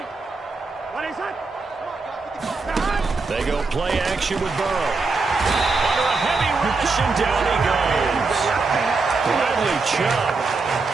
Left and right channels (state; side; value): quieter; left; 4.0 dB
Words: They go play action with Burrow. Under a heavy rush, and down he goes. Bradley Chubb